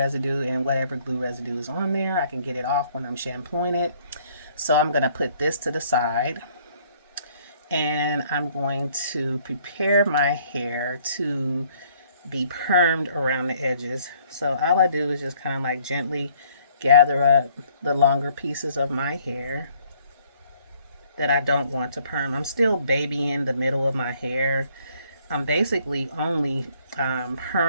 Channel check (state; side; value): inverted; both; correlation -0.62